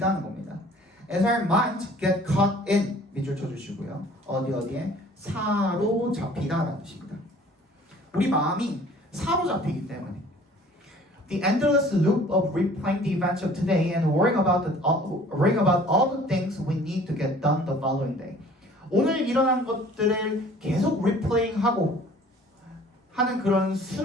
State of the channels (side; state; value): both; normal; correlation 0.51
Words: 겁니다. As our minds get caught in 밑줄 쳐주시고요. 어디에 사로잡히다라는 뜻입니다. 우리 마음이 사로잡히기 때문에 The endless loop of replaying the events of today and worrying about all the things we need to get done the following day. 오늘 일어난 것들을 계속 리플레잉하고 하는 그런